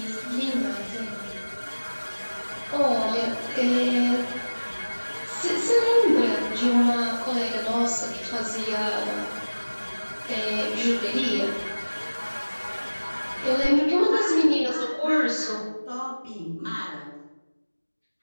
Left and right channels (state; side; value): inverted; both; correlation -1.00